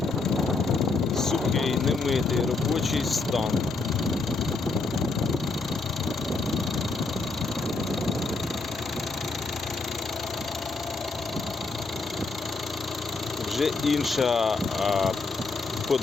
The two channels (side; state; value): right; quieter; 3.8 dB